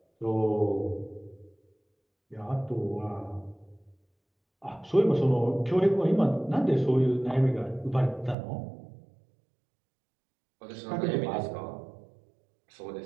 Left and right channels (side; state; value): left; drops out; at 8.3 s